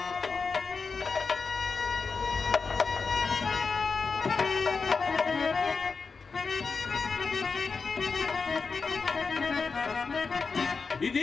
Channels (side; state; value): right; quieter; 4.8 dB